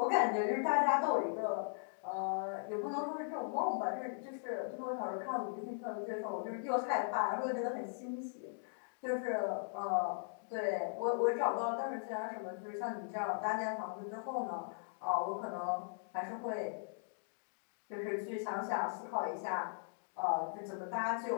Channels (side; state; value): right; silent; digital silence